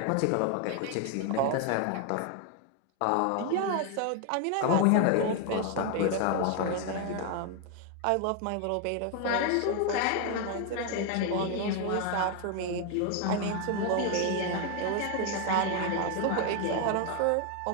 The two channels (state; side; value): different; both; correlation 0.01